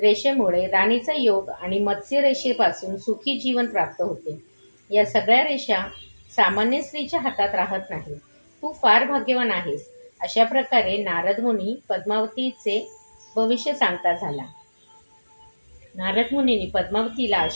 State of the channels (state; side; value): inverted; both; correlation -1.00